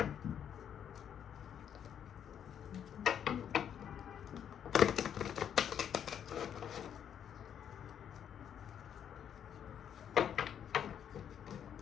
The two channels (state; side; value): quieter; right; 8.9 dB